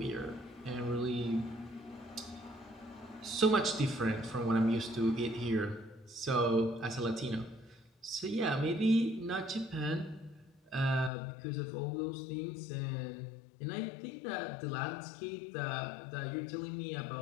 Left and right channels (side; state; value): right; drops out; at 11.1 s